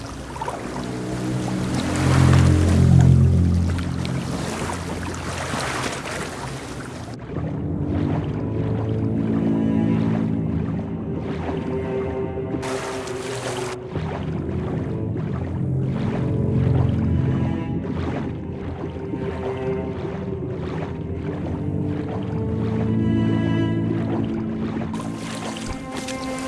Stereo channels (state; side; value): identical; both; correlation 1.00